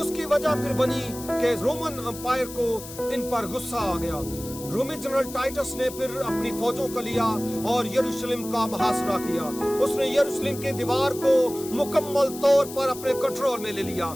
उसकी वजह फिर बनी कि रोमन एम्पायर को इन पर गुस्सा आ गया। रोमी जनरल टाइटस ने फिर अपनी फौजों को लिया और यरूशलेम का मुहासरा किया। उसने यरूशलेम की दीवार को मुकम्मल तौर पर अपने कंट्रोल में ले लिया।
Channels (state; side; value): noise; left; hiss, 13 dB below the sound